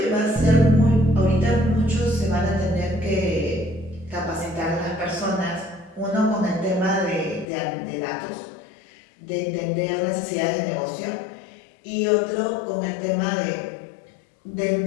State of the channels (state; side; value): drops out; right; at 7.5 s